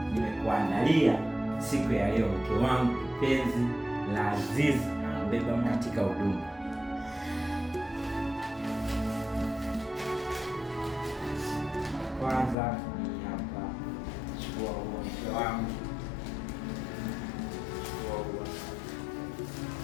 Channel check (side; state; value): right; drops out; at 12.6 s